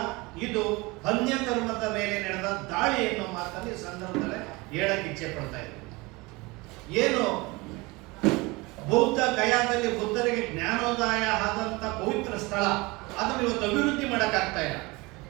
ಇದು ಅನ್ಯ ಧರ್ಮದ ಮೇಲೆ ನಡೆದ ದಾಳಿ ಎನ್ನುವ ಮಾತನ್ನು ಈ ಸಂದರ್ಭದಲ್ಲಿ ಹೇಳಕ್ಕೆ ಇಚ್ಛೆ ಪಡ್ತಾ ಇದ್ದೀವಿ. ಏನು ಬೌದ್ಧ ಗಯಾದಲ್ಲಿ ಬುದ್ಧರಿಗೆ ಜ್ಞಾನೋದಯ ಆದಂತ ಪವಿತ್ರ ಸ್ಥಳ, ಅದನ್ನು ಇವತ್ತು ಅಭಿವೃದ್ಧಿ ಮಾಡಕ್ಕಾಗ್ತಾ ಇಲ್ಲ.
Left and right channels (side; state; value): left; quieter; 24.1 dB